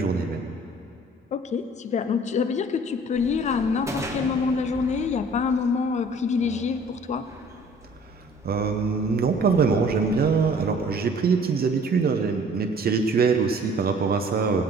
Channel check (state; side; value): normal; both; correlation 0.52